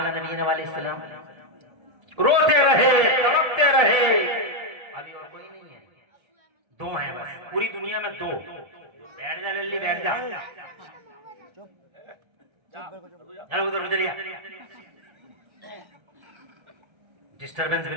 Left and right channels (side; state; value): left; late; 1.3 ms